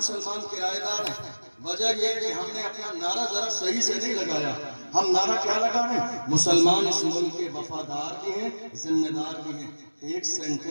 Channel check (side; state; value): both; inverted; correlation -1.00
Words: کرایہ دار ہیں, وجہ یہ کہ ہم نے اپنا نعرہ ذرا صحیح سے نہیں لگایا. ہم نعرہ کیا لگا رہے ہیں؟ مسلمان اس ملک کے وفادار بھی ہیں, ذمہ دار بھی ہیں. ایک